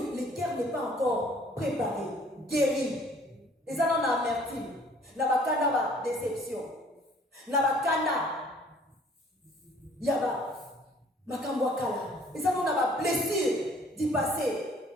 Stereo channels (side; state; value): both; normal; correlation 0.56